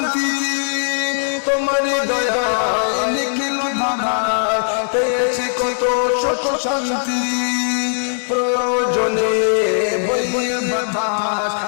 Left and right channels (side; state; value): right; silent; 59 dB below the other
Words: তোমার দয়ায় নিখিল দাদায় পেয়েছি কত সুখ শান্তি প্রয়োজনে বইয়ে